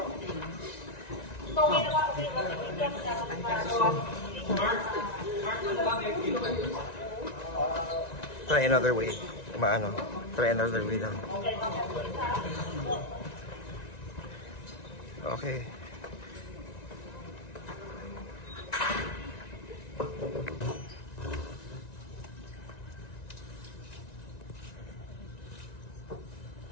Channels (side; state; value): right; late; 1.9 ms